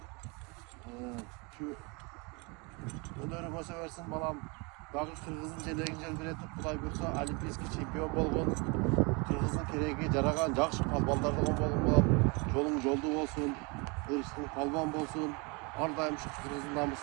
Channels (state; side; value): quieter; left; 30.2 dB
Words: şu önörüme seversin balam. Dagı Kırgız'ın jelegin biletip Kuday buyursa olimpiyskiy çempiyon bolgun. Kırgız'ın keregi jaragan jakşı palbanlardan bolgun balam. Jolun joldu bolsun, ırışın palban bolsun. Ardayım şu Kırgız'ın